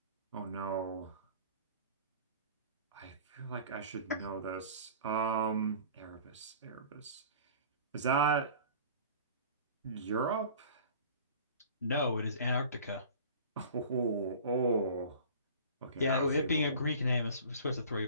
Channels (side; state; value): both; inverted; correlation -0.44